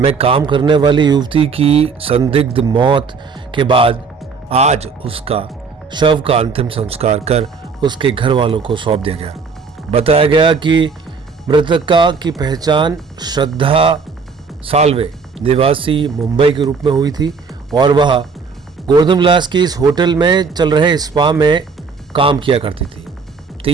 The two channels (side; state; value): left; quieter; 5.1 dB